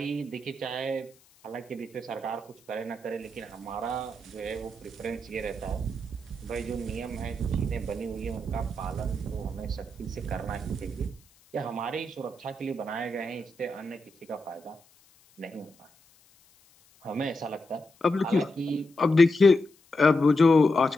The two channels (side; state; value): left; noise; hiss, 30 dB below the sound